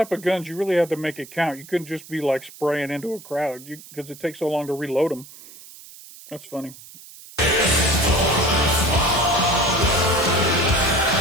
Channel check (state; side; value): noise; right; hiss, 19 dB below the sound